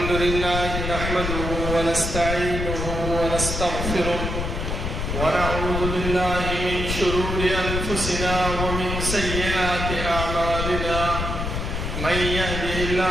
لله نحمده ونستعينه ونستغفره ونعوذ بالله من شرور أنفسنا ومن سيئات أعمالنا. من يهده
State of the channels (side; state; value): left; noise; rumble, 3 dB below the sound